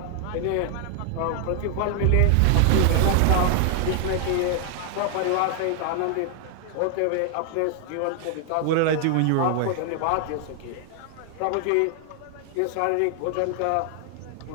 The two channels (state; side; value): different; both; correlation 0.00